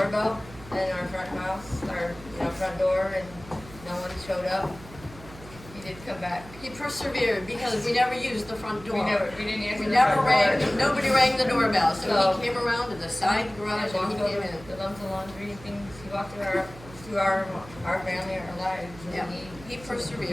in our front house, our front door, and no one showed up, he did come back. He persevered because we never used the front door. We didn't answer We the never front rang. door. Nobody rang the doorbell, so he came around to the side garage and he walked came over in. the lumps of laundry things. He walked through our family, our lives. And Yeah, he persevered.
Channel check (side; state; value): right; noise; hum, 18 dB below the sound